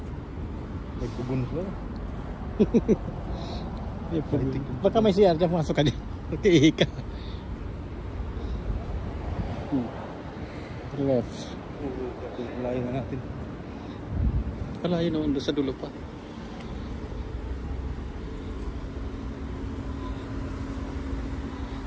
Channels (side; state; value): both; identical; correlation 1.00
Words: May kubon sila. Baka may CR dyan, pumasok ka din. Ihi ka. Left. Layo na natin. Pala yun naman doon sa dulo pa.